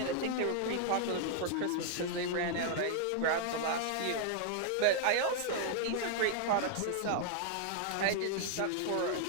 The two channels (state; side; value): different; both; correlation 0.00